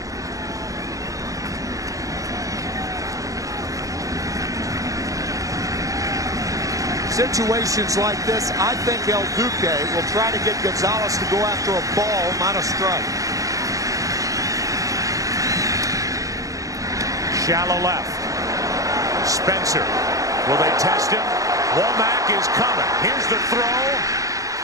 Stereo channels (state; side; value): late; left; 0.16 ms